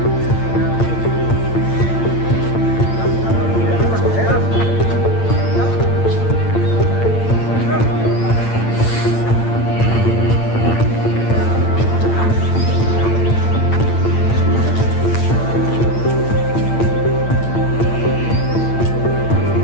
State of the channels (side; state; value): right; late; 8.8 ms